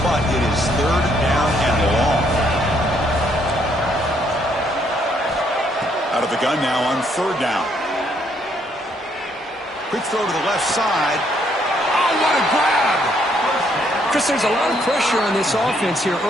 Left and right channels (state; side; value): normal; both; correlation 0.70